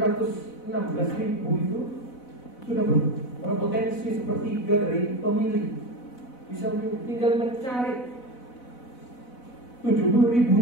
itu sudah berpotensi sepertiga dari pemilih. Bisa tinggal mencari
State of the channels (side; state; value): right; late; 4.0 ms